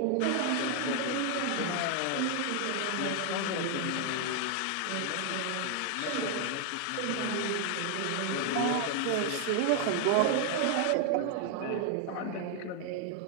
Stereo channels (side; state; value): both; different; correlation 0.00